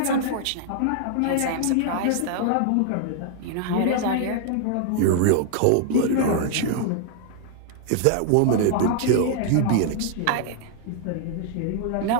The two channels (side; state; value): both; different; correlation 0.00